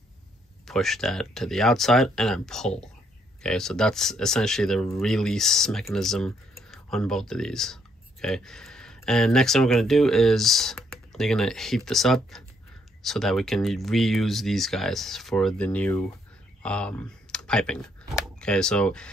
push that to the outside and then pull. Okay, so that's essentially the release mechanism on both of these. Okay, and next thing we're gonna do is you're gonna heat this up so that we can reuse these guys for the new piping. Okay, so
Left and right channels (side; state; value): both; normal; correlation 0.71